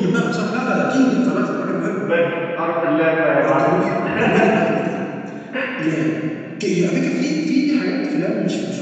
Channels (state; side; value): identical; both; correlation 1.00